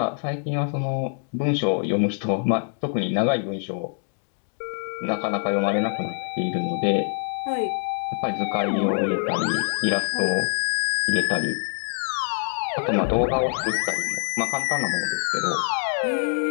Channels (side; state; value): right; silent; digital silence